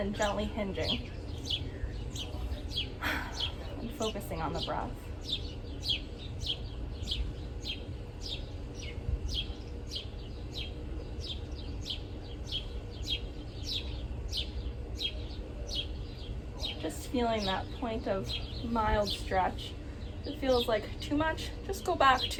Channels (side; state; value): both; identical; correlation 1.00